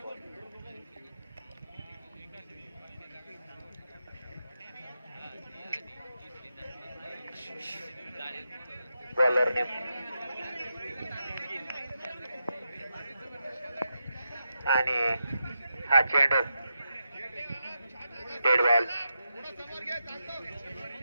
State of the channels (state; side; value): inverted; both; correlation -0.87